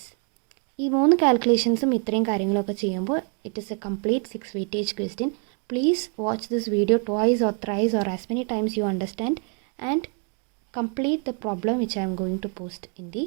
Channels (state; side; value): quieter; left; 37.9 dB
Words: ഈ 3 കാൽക്കുലേഷൻസും ഇത്രയും കാര്യങ്ങളൊക്കെ ചെയ്യുമ്പോൾ it is A complete 6 weightage question. Please watch this video twice or thrice or as many times you understand and complete the problem which I am going to post in the